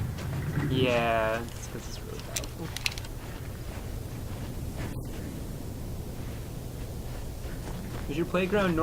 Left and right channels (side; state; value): both; identical; correlation 1.00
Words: Yeah, it's because it's really powerful. Is your playground